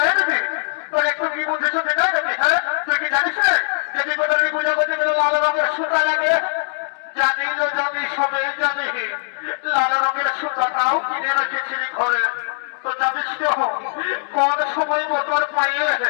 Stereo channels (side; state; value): right; silent; 65 dB below the other